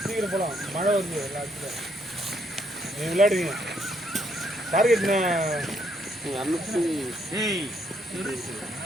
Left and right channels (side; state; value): both; normal; correlation 0.72